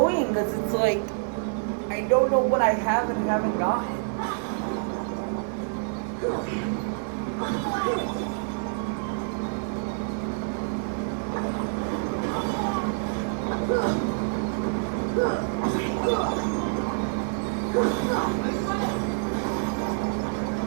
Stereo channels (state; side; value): silent; left; digital silence